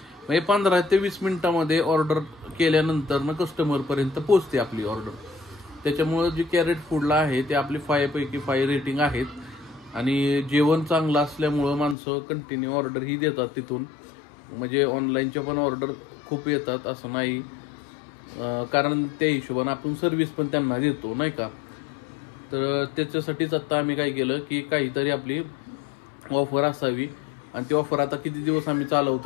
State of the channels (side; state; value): right; drops out; at 12.0 s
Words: म्हणजे 15 ते 20 मिनिटामध्ये ऑर्डर केल्यानंतर ना कस्टमरपर्यंत पोहोचते आपली ऑर्डर. त्याच्यामुळं जे कॅरेट फूडला आहे ते आपले 5 पैकी 5 रेटिंग आहेत. आणि जेवण चांगलं असल्यामुळं माणसं कंटिन्यू ऑर्डर ही देतात तिथून. म्हणजे ऑनलाईनच्या पण ऑर्डर खूप येतात असं नाही, कारण त्या हिशोबाने आपण सर्व्हिस पण त्यांना देतो नाही का. तर त्याच्यासाठीच आता आम्ही काय केलं की काहीतरी आपली ऑफर असावी. आणि ती ऑफर आता किती दिवस आम्ही